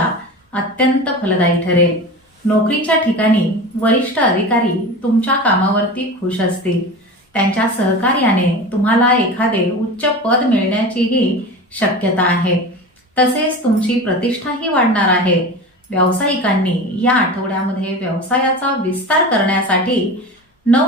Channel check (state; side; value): normal; both; correlation 0.31